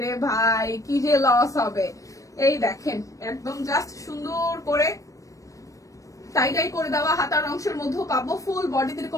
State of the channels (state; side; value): late; right; 0.16 ms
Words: রে ভাই কি যে লস হবে। এই দেখেন একদম জাস্ট সুন্দর করে টাইডাই করে দেওয়া, হাতার অংশের মধ্যেও পাবো, ফুল বডিতে